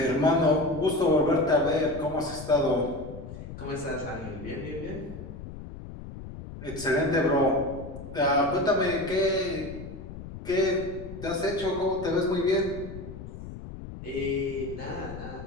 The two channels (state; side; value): noise; left; rumble, 12 dB below the sound